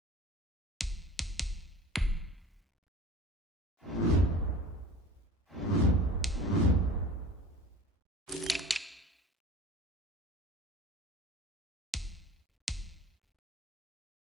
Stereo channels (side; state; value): both; normal; correlation 0.41